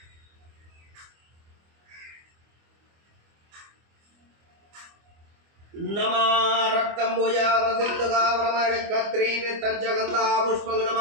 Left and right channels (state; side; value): late; left; 25 ms